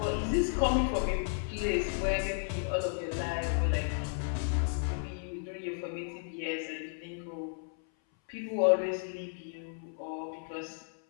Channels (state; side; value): silent; right; 56 dB below the other